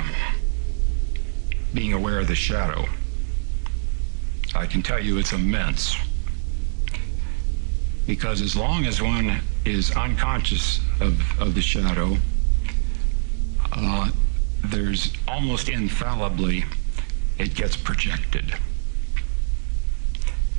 being aware of the shadow? I can tell you it's immense. Because as long as one is unconscious of the shadow, there's almost infallibly, it gets projected.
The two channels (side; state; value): left; silent; digital silence